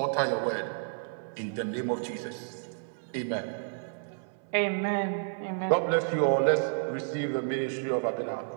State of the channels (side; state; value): left; silent; 57 dB below the other